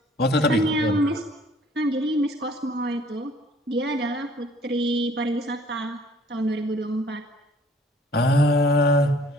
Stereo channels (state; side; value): normal; both; correlation 0.56